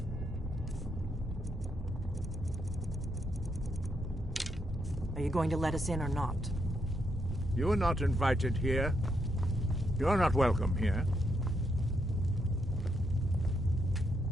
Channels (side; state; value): both; normal; correlation 0.79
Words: Are you going to let us in or not? You are not invited here. You are not welcome here.